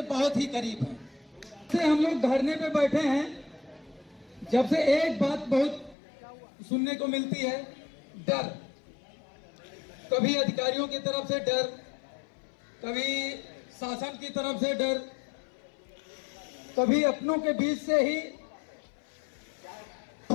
बहुत ही करीब हैं। से हम लोग धरने पे बैठे हैं, जब से एक बात बहुत सुनने को मिलती है, डर। कभी अधिकारियों की तरफ से डर, कभी शासन की तरफ से डर, कभी अपनों के बीच से ही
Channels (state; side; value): drops out; right; at 6.0 s